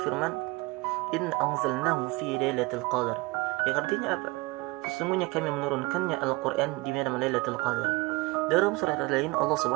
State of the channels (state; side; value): quieter; left; 23.9 dB